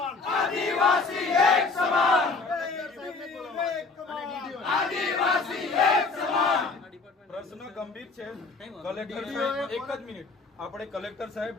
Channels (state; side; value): quieter; right; 4.0 dB